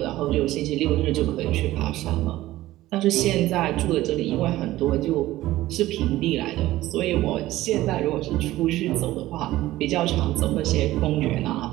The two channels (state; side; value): quieter; left; 16.1 dB